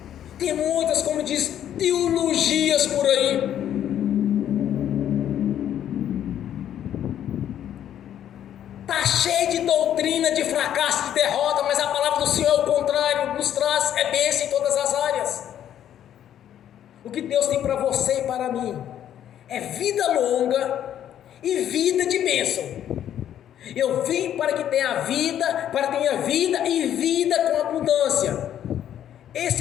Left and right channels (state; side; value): quieter; right; 10.5 dB